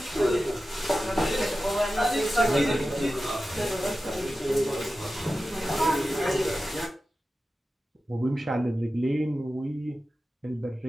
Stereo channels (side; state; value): both; normal; correlation 0.93